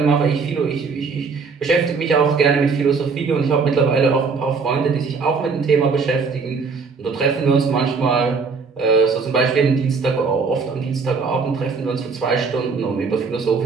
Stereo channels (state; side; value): quieter; left; 5.0 dB